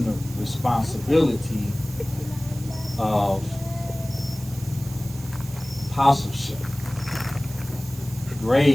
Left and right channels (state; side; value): noise; right; hiss, 17 dB below the sound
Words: the responsibility of apostleship,